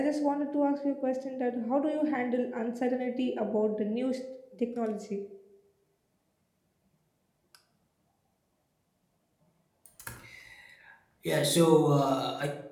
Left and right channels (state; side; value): identical; both; correlation 1.00